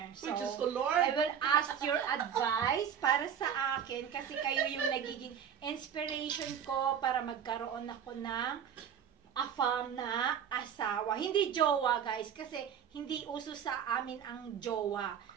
So, Which is the I Lord. will ask your advice para sa akin kasi kayo yung nagiging inspiration ko para magkaroon ako ng AFAM na asawa. Hindi jowa, guys, kasi hindi uso sa amin ang jowa.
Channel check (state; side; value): quieter; left; 8.3 dB